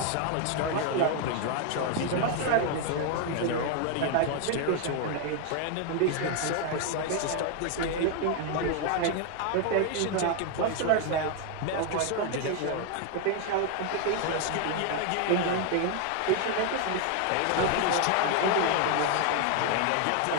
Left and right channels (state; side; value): different; both; correlation 0.01